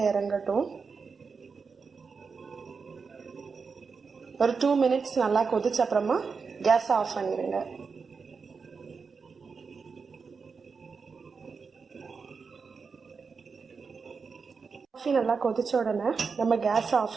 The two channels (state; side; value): quieter; left; 5.2 dB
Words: இறங்கட்டும். ஒரு 2 மினிட்ஸ் நல்லா கொதிச்ச அப்புறமா கேஸை ஆஃப் பண்ணிடுங்க. காஃபி நல்லா கொதிச்ச உடனே நம்ம கேஸை